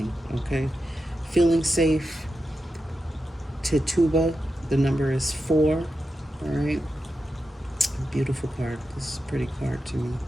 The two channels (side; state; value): both; normal; correlation 0.89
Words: Okay. Feeling safe. Tituba. The number is 4. All right. Beautiful card. This is a pretty card to me.